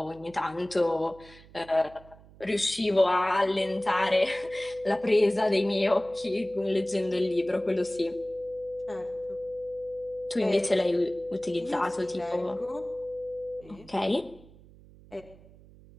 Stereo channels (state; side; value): noise; right; hum, 23 dB below the sound